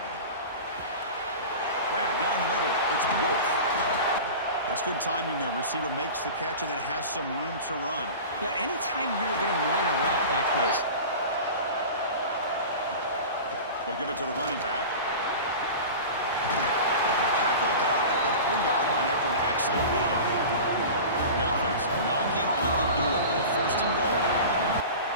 Grab down the middle. It's Wolf. That's good timing there. Receiver makes the catch and then has some room to run. Yeah, anytime you're going to run a route like this. They'll give it to the running back. Tackled down at the 3-yard line after an excellent run. The offense knocking on the door with a first and goal.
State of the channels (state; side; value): inverted; both; correlation -0.34